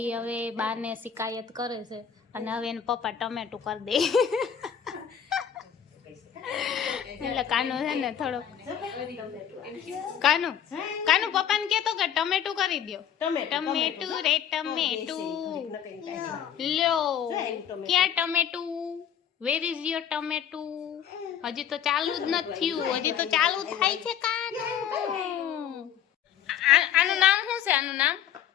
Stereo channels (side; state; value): right; quieter; 9.0 dB